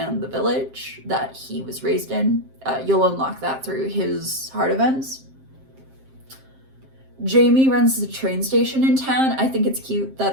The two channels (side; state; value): left; late; 7.6 ms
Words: the village that he was raised in. You'll unlock that through his heart events. Jamie runs the train station in town. I think it's cute